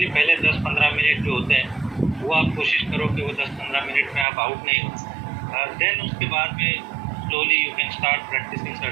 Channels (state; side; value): drops out; left; at 4.2 s